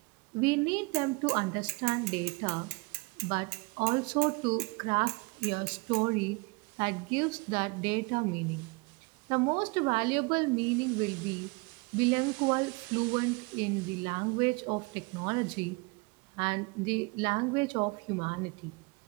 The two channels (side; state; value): left; quieter; 28.5 dB